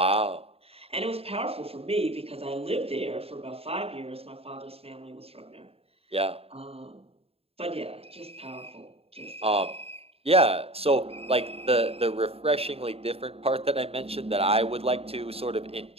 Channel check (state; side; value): late; left; 0.28 ms